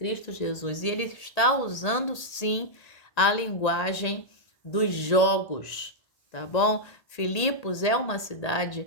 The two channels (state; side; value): late; right; 1.8 ms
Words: Jesus. E ele está usando, sim, a linguagem dos jogos, tá bom? Filipos é uma